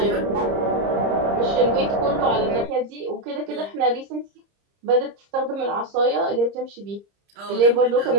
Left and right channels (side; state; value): left; late; 30 ms